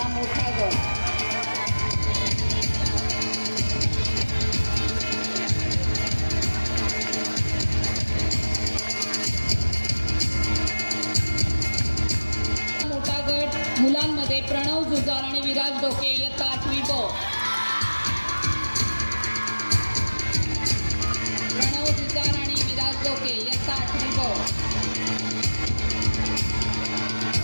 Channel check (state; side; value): inverted; both; correlation -1.00